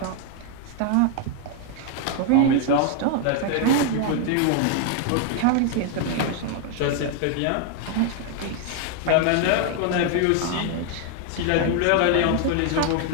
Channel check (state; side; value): different; both; correlation 0.00